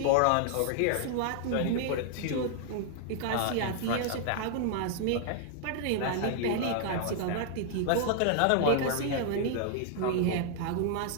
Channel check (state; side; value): different; both; correlation 0.00